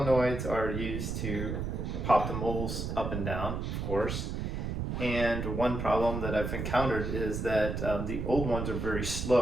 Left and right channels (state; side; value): noise; right; rumble, 3 dB below the sound